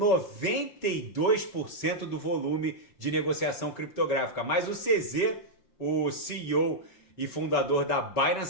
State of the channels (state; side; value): late; right; 5.2 ms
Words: do volume de negociação criptográfica, mas o CZ, o CEO e fundador da